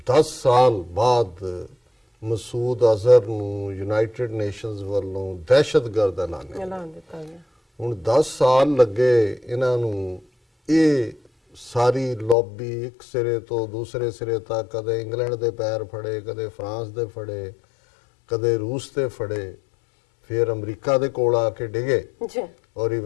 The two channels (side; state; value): right; drops out; at 12.4 s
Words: 10 ਸਾਲ ਬਾਅਦ ਮਸੂਦ ਅਜ਼ਹਰ ਨੂੰ ਯੂਨਾਈਟਿਡ ਨੇਸ਼ਨਸ ਵੱਲੋਂ ਦਹਿਸ਼ਤਗਰਦ ਐਲਾਨ ਦਿੱਤਾ ਗਿਆ। ਹੁਣ 10 ਸਾਲ ਲੱਗੇ ਇਹਨਾਂ ਨੂੰ ਇਹ ਸਾਰੀ ਲੌਬੀ ਇੱਕ ਸਿਰੇ ਤੋਂ ਦੂਸਰੇ ਸਿਰੇ ਤੱਕ, ਕਦੇ ਇੰਗਲੈਂਡ ਦੇ ਪੈਰ ਫੜੇ, ਕਦੇ ਫਰਾਂਸ ਦੇ ਫੜੇ, ਕਦੇ ਰੂਸ ਦੇ ਫੜੇ, ਫਿਰ ਅਮਰੀਕਾ ਦੇ ਕੋਲ ਆ ਕੇ ਡਿਗੇ ਔਰ